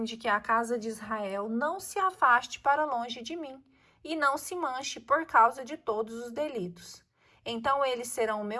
de que a casa de Israel não se afaste para longe de mim e não se manche por causa de todos os delitos. Então eles serão o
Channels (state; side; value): identical; both; correlation 1.00